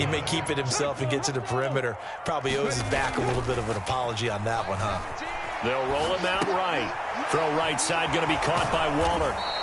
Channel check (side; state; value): both; identical; correlation 1.00